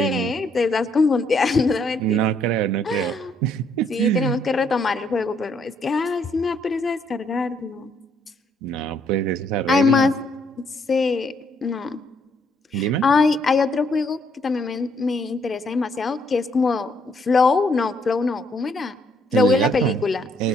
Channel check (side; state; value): both; normal; correlation 0.70